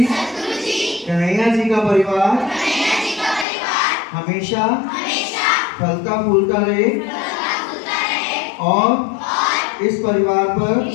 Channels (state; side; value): drops out; right; at 3.5 s